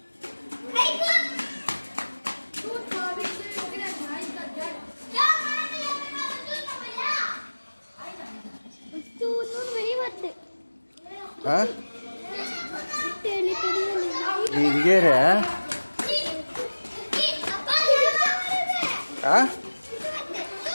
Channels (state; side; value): inverted; both; correlation -1.00